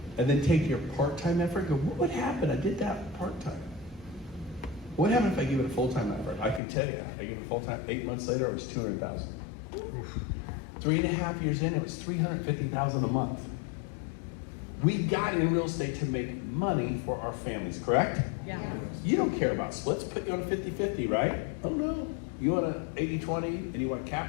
And then take your part-time effort and go, what would happen? I did that part-time. What happened if I give it a full-time effort? I can tell you that. I give it full-time, 8 months later, it was 200,000. 3.5 years in, it was 350,000 a month. We got in real estate to make money for our families, correct? Yeah. You don't care about splits, put you on a 50-50, right? Oh no, you want an 80-20 and you want a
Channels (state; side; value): drops out; right; at 6.6 s